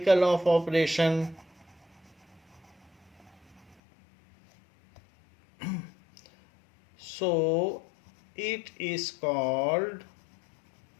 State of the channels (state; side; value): drops out; right; at 3.8 s